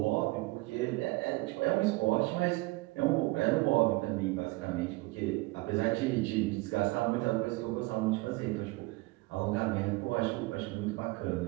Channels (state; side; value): quieter; left; 22.6 dB